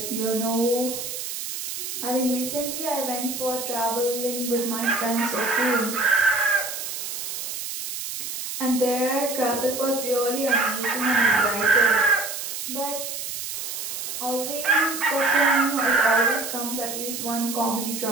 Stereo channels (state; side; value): noise; right; hiss, 6 dB below the sound